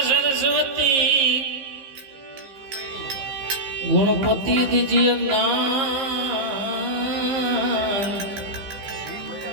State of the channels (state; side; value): late; left; 15 ms